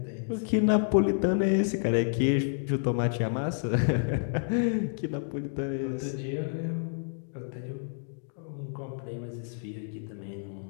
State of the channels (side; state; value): right; silent; digital silence